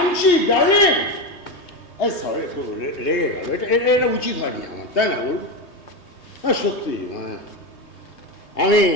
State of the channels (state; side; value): late; right; 3.2 ms